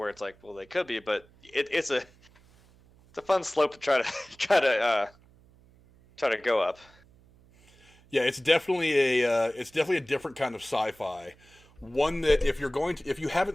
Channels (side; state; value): right; noise; hum, 28 dB below the sound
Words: it's like, well, they could be, but it's a fun slope to try to go up. Yeah, it's definitely a different kind of sci-fi. One that if you